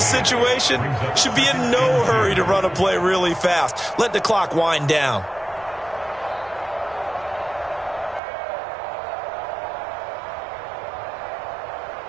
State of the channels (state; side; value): drops out; left; at 8.2 s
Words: situation, should be in no hurry to run a play really fast. Let the clock wind down.